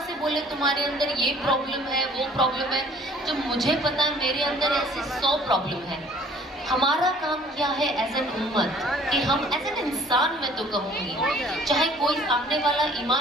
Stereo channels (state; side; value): normal; both; correlation 0.55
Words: से बोले तुम्हारे अंदर ये प्रॉब्लम है, वो प्रॉब्लम है, जब मुझे पता है मेरे अंदर ऐसे 100 प्रॉब्लम है। हमारा काम क्या है एज एन उम्मत, कि हम एज एन इंसान, मैं तो कहूँगी, चाहे कोई सामने वाला